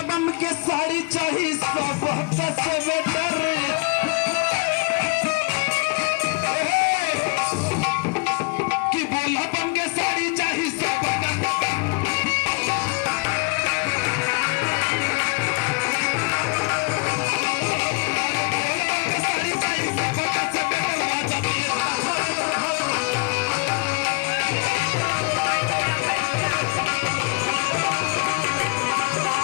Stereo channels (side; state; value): right; quieter; 29.9 dB